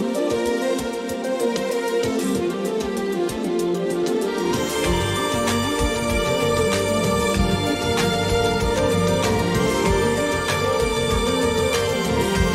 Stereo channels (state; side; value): identical; both; correlation 1.00